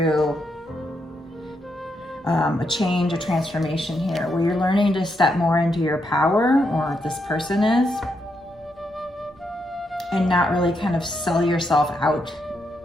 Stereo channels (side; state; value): both; normal; correlation 0.81